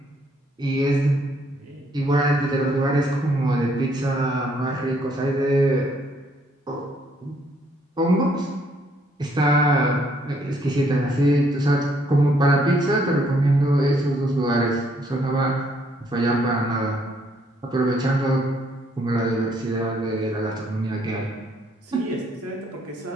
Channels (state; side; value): normal; both; correlation 0.68